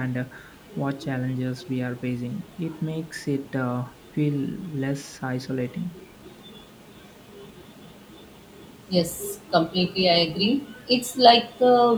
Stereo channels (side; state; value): both; identical; correlation 1.00